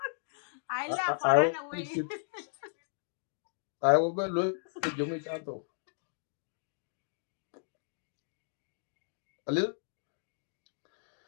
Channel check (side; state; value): right; silent; digital silence